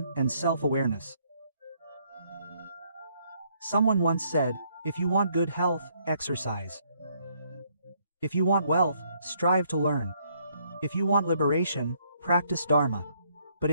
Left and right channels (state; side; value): inverted; both; correlation -0.69